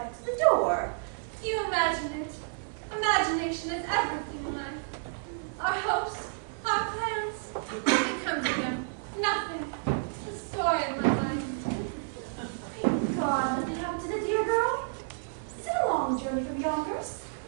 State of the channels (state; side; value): silent; left; digital silence